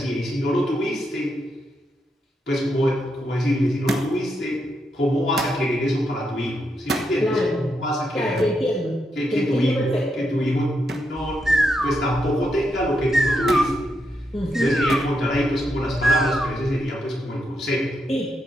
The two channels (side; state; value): both; normal; correlation 0.82